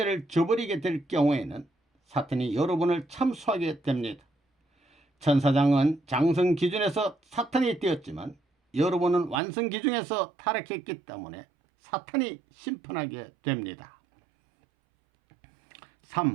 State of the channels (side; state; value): left; drops out; at 9.4 s